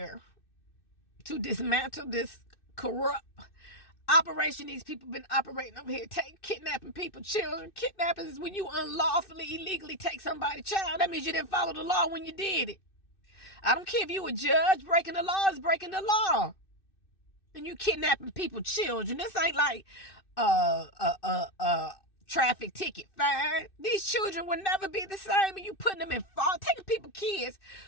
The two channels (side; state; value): right; late; 2.6 ms